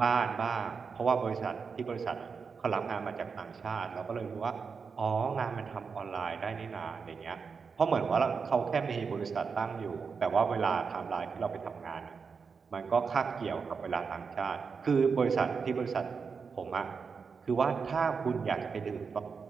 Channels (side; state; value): left; quieter; 5.5 dB